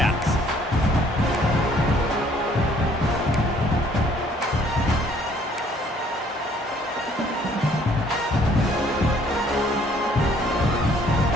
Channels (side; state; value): both; normal; correlation 0.61